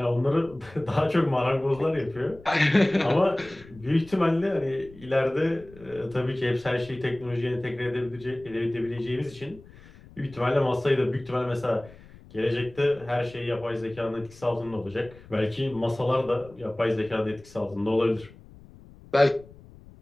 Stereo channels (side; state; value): left; noise; rumble, 21 dB below the sound